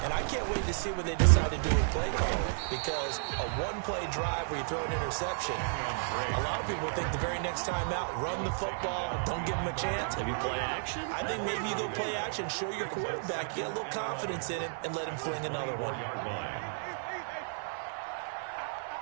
And I can't wait to see what they decide to do with play calling. Because a 1-play drive where you throw an interception, a lot of people think the very next time out, run the football, don't give them a chance. Maybe play action? I think maybe you go play action, show your quarterback, get a little confidence in him, and let him fling another one.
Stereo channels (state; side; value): silent; left; digital silence